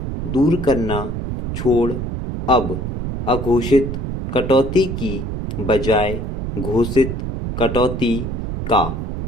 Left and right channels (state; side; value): noise; right; rumble, 4 dB below the sound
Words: दूर करना छोड़ अब अघोषित कटौती की बजाय घोषित कटौती का